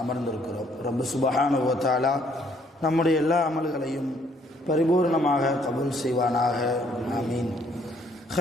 அமர்ந்திருக்கிறோம். ரப்பு சுப்ஹானஹு வ தஆலா நம்முடைய எல்லா அமல்களையும் பரிபூர்ணமாக கபூல் செய்வானாக. ஆமீன்.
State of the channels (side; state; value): both; normal; correlation 0.65